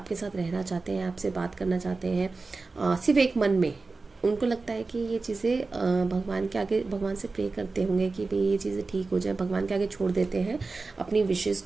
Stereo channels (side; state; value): left; quieter; 3.8 dB